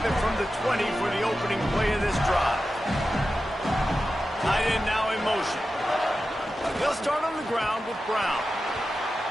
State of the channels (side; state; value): both; normal; correlation 0.92